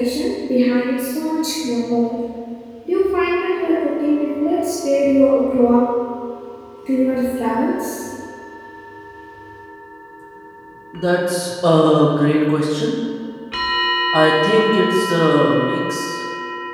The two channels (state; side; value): identical; both; correlation 1.00